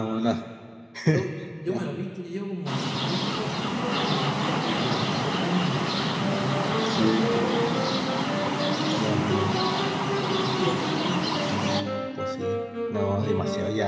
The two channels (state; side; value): identical; both; correlation 1.00